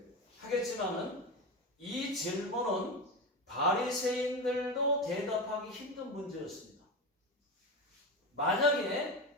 하겠지만은 이 질문은 바리새인들도 대답하기 힘든 문제였습니다. 만약에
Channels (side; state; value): both; normal; correlation 0.20